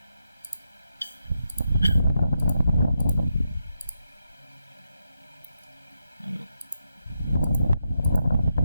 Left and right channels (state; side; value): inverted; both; correlation -0.84